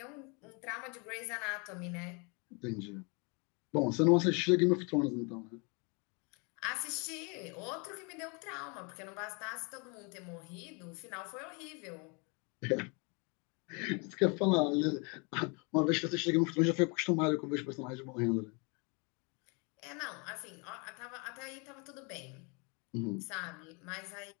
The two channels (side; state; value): right; quieter; 32.3 dB